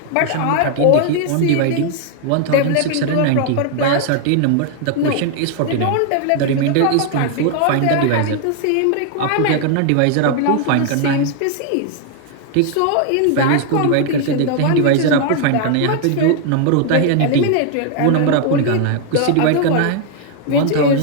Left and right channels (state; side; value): different; both; correlation 0.00